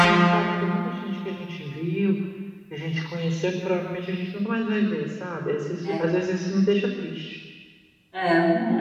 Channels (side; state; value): both; identical; correlation 1.00